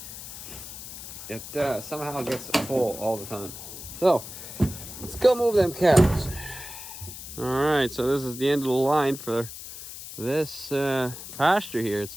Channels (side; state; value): left; noise; hiss, 11 dB below the sound